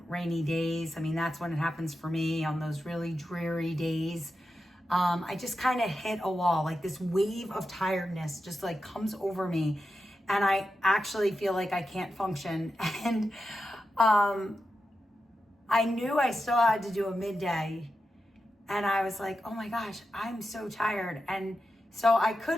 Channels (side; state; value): both; normal; correlation 0.90